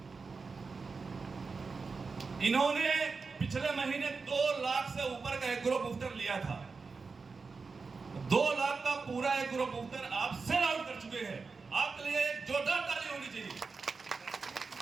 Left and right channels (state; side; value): quieter; left; 4.6 dB